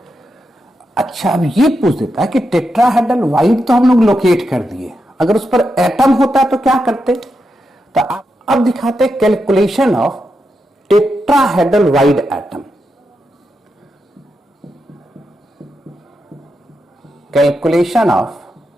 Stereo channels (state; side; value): normal; both; correlation 0.86